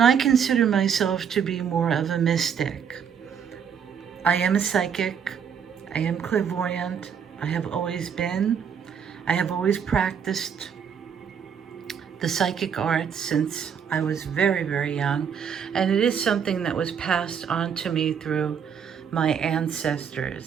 I consider myself to be more of a mystic. I am a psychic. I am clairvoyant. I have always been. I have always practiced the psychic arts since I was very, very young. And it is something that was passed on to me through my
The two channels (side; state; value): left; quieter; 7.5 dB